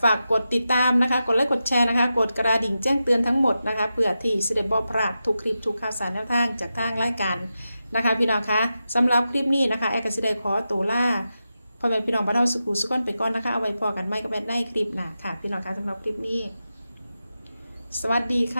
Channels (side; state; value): both; inverted; correlation -0.90